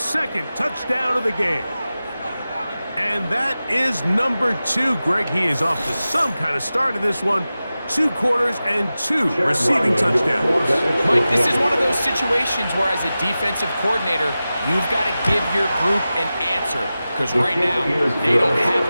touchdown of the game. And that is number 2. Greg, he is off to some kind of start in this one. 2 quarters and 2 receiving touchdowns. Mike, this is one of those situations where as a defensive coordinator, you've got to give your group an answer. Because right now, they don't have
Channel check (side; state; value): both; inverted; correlation -0.95